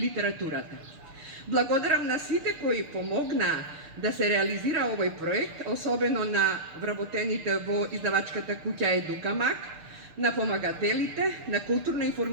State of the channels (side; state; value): left; late; 6.7 ms